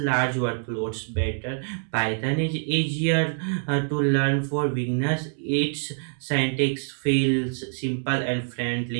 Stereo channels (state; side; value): silent; left; 60 dB below the other